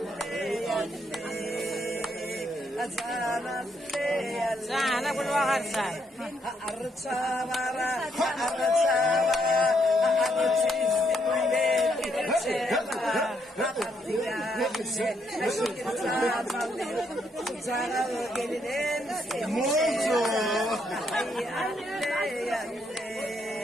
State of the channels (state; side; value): normal; both; correlation 0.75